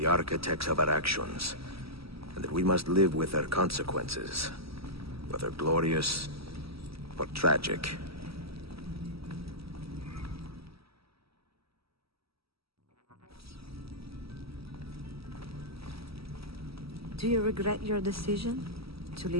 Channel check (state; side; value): late; left; 0.76 ms